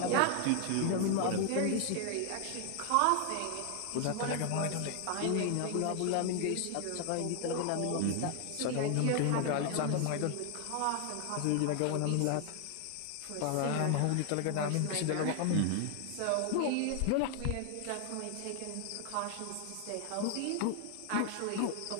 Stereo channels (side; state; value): both; different; correlation 0.00